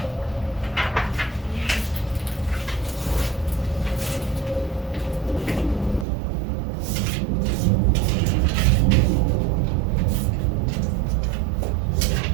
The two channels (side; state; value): left; drops out; at 6.1 s